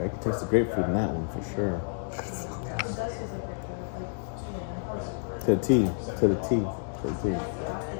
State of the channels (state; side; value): silent; right; digital silence